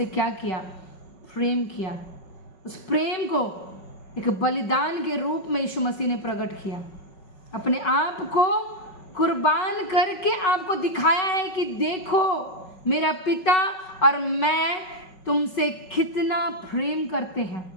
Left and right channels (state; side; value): late; right; 5.4 ms